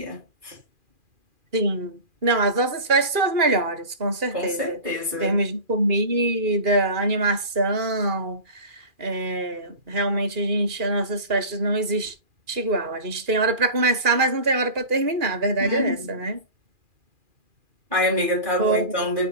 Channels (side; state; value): left; late; 2.4 ms